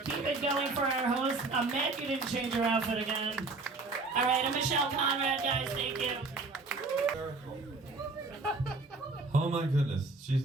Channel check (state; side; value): quieter; left; 3.6 dB